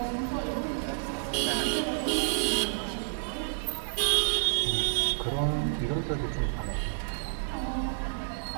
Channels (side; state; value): left; silent; 58 dB below the other